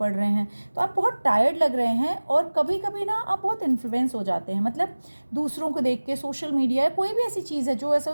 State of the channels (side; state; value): both; inverted; correlation -1.00